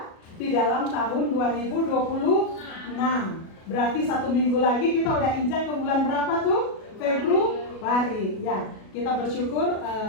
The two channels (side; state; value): right; late; 37 ms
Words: di dalam tahun 2026. Berarti 1 minggu lagi kita udah injak ke bulan berapa tuh? Februari. Ya, kita bersyukur